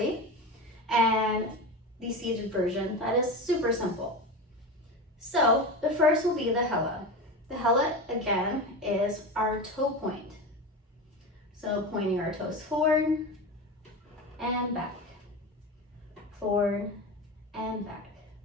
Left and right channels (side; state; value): both; normal; correlation 0.25